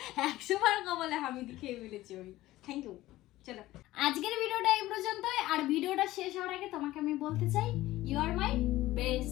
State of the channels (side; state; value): right; quieter; 16.5 dB